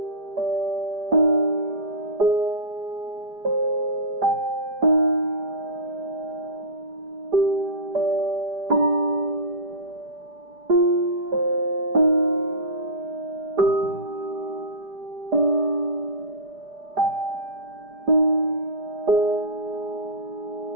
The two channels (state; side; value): late; left; 5.0 ms